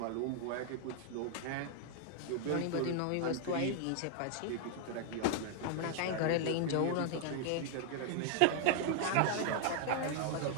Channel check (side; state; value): both; different; correlation 0.00